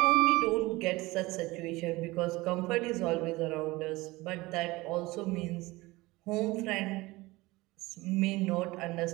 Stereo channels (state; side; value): quieter; left; 20.9 dB